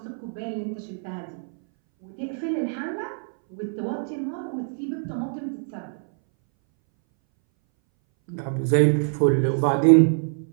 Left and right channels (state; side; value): silent; left; 60 dB below the other